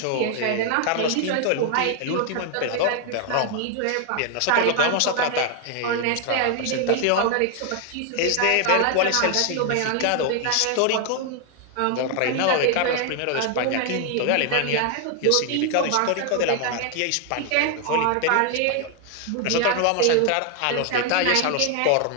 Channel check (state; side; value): different; both; correlation 0.00